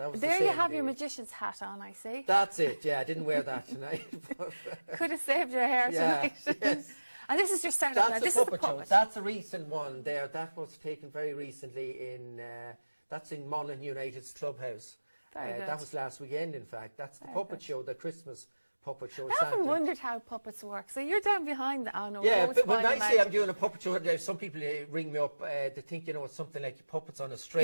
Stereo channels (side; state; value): both; inverted; correlation -1.00